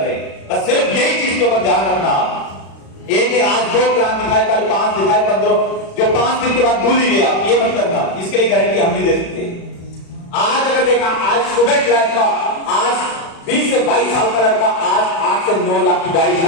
हैं। बस सिर्फ यही चीज के ऊपर ध्यान रखना। एक आज 2 प्लान दिखाए, कल 5 दिखाए, 15, जो 5 दिन के बाद भूल ही गया, ये मत करना। इसके लिए गारंटी हम नहीं दे सकते। आज अगर देखा, आज स्टूडेंट लाइफ का, आज 20 से 22 साल का लड़का आज 8 से 9 लाख की गाड़ी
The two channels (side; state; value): right; late; 36 ms